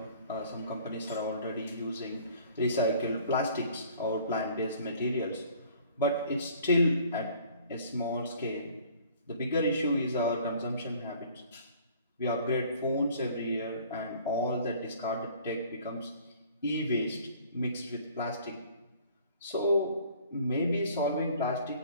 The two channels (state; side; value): inverted; both; correlation -0.53